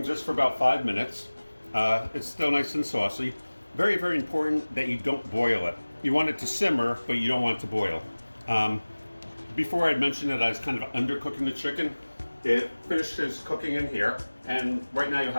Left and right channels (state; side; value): inverted; both; correlation -1.00